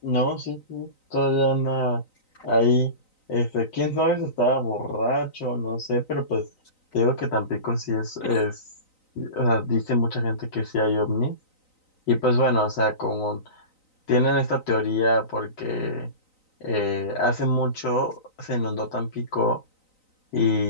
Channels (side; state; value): right; late; 3.9 ms